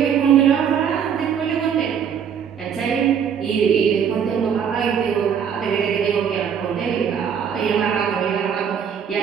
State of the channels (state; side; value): quieter; left; 7.8 dB